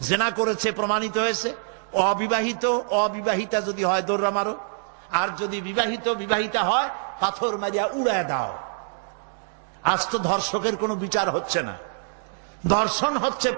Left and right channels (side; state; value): left; silent; digital silence